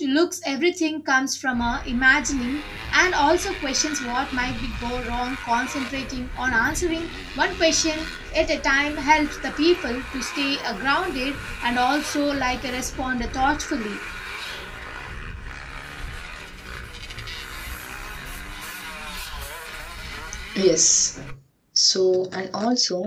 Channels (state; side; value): identical; both; correlation 1.00